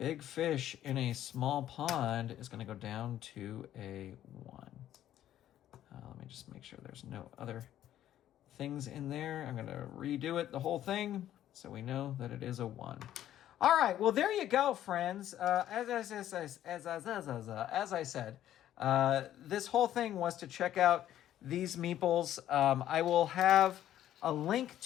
fish in a small pond is going to go down to a 1. Let me just make sure there's no other things in there. I'm going to redo it, the whole thing, so we know that it is a 1. All right, well, there you go, friends. As I said, this whole thing was to check out these meeples. I will have a link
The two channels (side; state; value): right; quieter; 12.0 dB